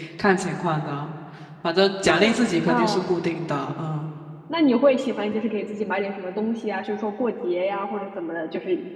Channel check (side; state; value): both; identical; correlation 1.00